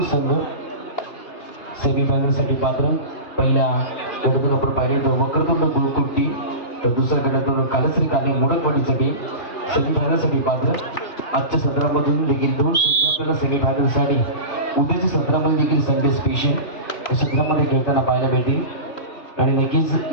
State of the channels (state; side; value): late; right; 2.4 ms